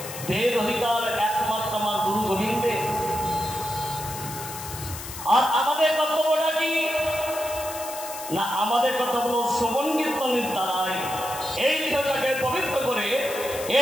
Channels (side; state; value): left; noise; hiss, 10 dB below the sound